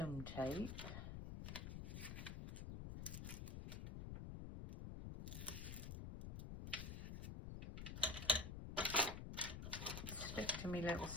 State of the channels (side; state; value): left; noise; rumble, 5 dB below the sound